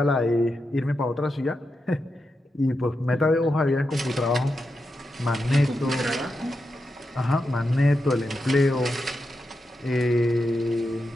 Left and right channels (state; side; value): normal; both; correlation 0.87